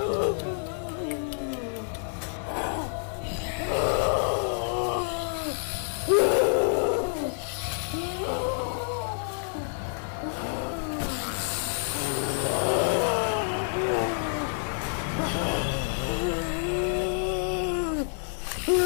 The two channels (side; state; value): right; silent; 59 dB below the other